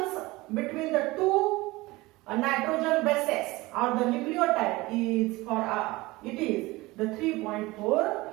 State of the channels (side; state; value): left; quieter; 20.9 dB